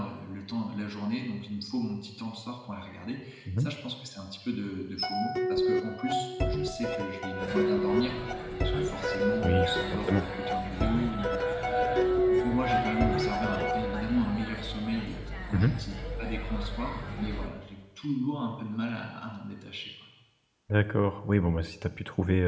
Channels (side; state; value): both; identical; correlation 1.00